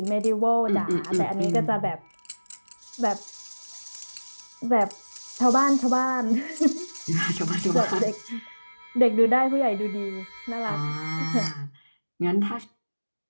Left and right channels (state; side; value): inverted; both; correlation -1.00